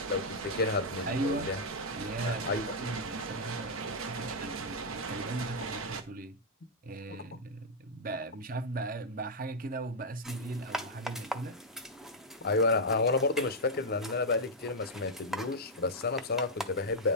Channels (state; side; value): normal; both; correlation -0.04